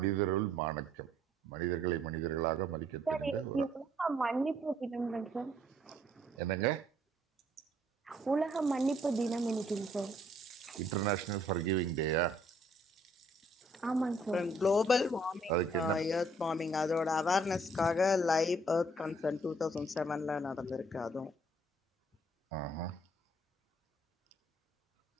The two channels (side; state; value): both; normal; correlation 0.64